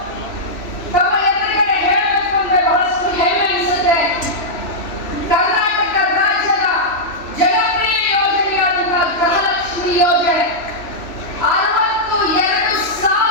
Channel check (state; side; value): late; right; 3.1 ms